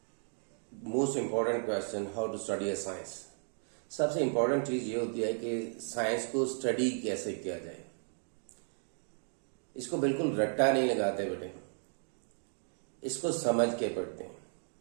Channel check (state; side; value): silent; left; 55 dB below the other